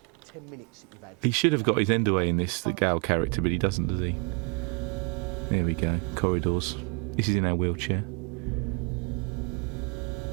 10 minutes that you've had. He should have got his end away in this, the Gal character, but he doesn't, does he? There we go. Corridors. This is in our wheelchair.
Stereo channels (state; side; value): quieter; left; 33.9 dB